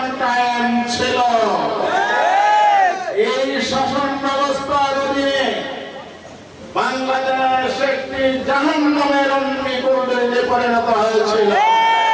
কায়েম ছিল। এই শাসন ব্যবস্থার অধীনে বাংলাদেশ একটি জাহান্নামের অগ্নিকুণ্ডে পরিণত হয়েছিল।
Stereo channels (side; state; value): both; identical; correlation 1.00